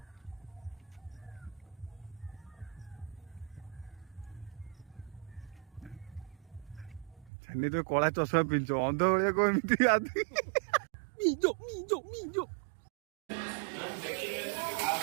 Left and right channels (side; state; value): left; drops out; at 7.3 s